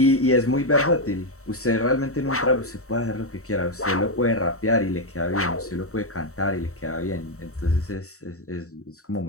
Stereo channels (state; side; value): late; right; 0.64 ms